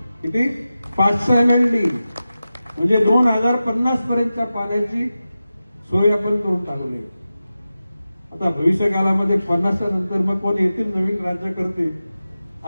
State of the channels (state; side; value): inverted; both; correlation -0.94